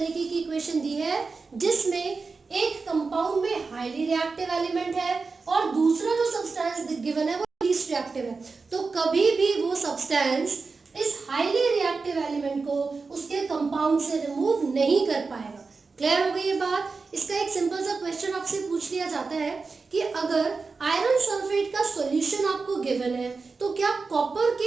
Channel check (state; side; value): quieter; left; 4.4 dB